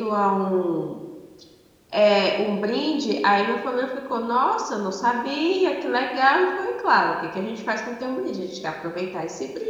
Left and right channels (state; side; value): identical; both; correlation 1.00